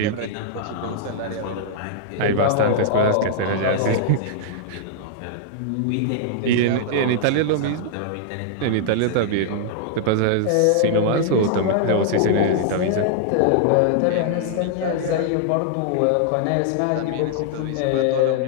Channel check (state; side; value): different; both; correlation -0.01